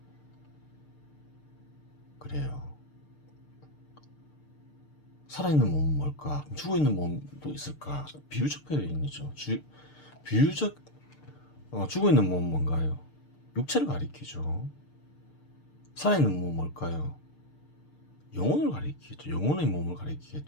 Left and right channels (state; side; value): late; right; 6.7 ms